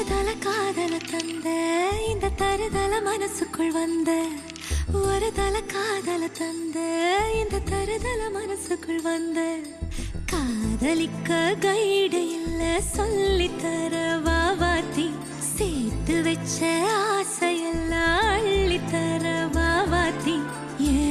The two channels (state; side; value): identical; both; correlation 1.00